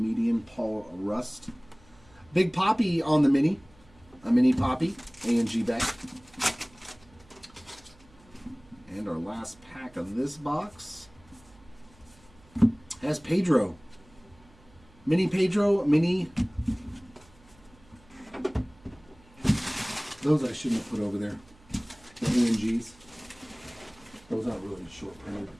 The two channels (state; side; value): noise; right; hum, 27 dB below the sound